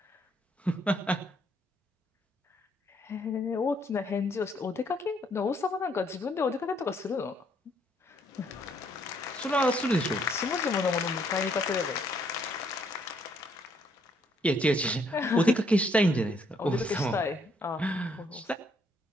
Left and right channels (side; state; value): both; normal; correlation 0.69